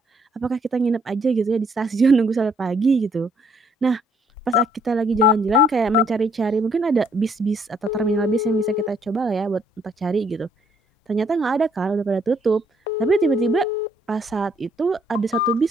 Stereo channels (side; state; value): both; normal; correlation 0.67